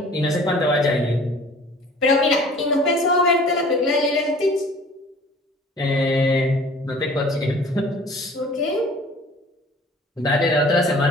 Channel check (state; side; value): normal; both; correlation 0.49